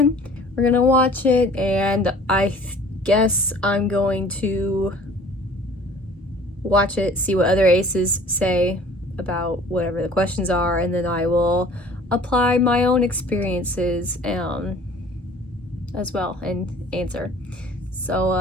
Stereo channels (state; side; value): normal; both; correlation 0.49